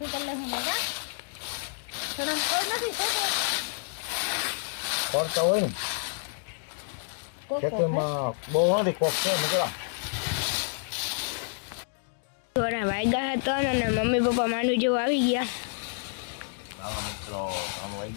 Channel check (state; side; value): silent; right; digital silence